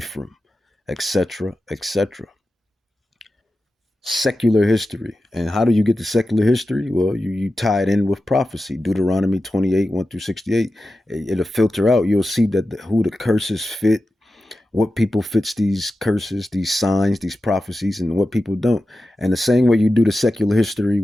etc., etc. Secular history. And how do you get to secular history? Well, you tie it in with prophecy. Deuteronomy 28, 1 through 68. It'll filter out. You'll see that who the curses fit, what people fits these curses, these signs, these prophecies, and what people don't. And the same way you do the secular history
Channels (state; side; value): normal; both; correlation 0.92